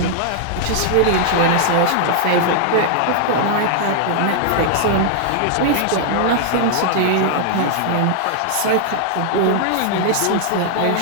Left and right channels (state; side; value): different; both; correlation 0.00